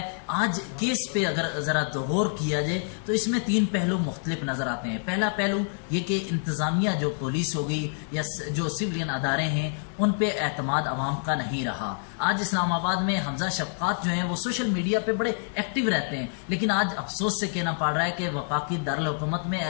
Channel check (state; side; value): silent; right; digital silence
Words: آج کیس پہ اگر ذرا غور کیا جائے تو اس میں 3 پہلو مختلف نظر آتے ہیں. پہلا پہلو یہ کہ انتظامیہ جو پولیس ہوگی یا جو سولین ادارے ہیں ان پہ اعتماد عوام کا نہیں رہا. آج اسلام آباد میں حمزہ شفقات جو ہیں وہ سوشل میڈیا پہ بڑے ایکٹیو رہتے ہیں, لیکن آج افسوس سے کہنا پڑ رہا ہے کہ وفاقی دارالحکومت میں